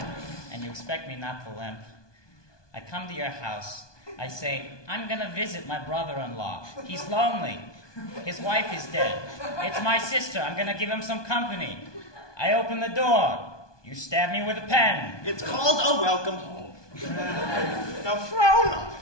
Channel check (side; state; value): right; late; 1.2 ms